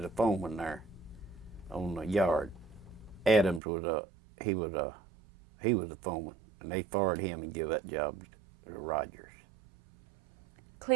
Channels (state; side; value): drops out; left; at 3.6 s